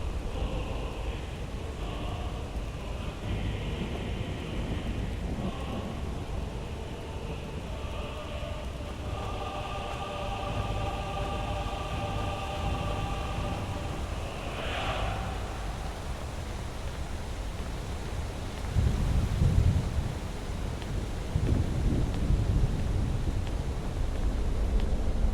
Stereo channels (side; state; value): both; identical; correlation 1.00